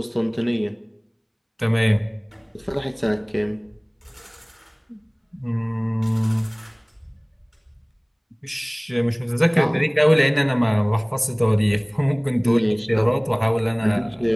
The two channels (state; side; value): identical; both; correlation 1.00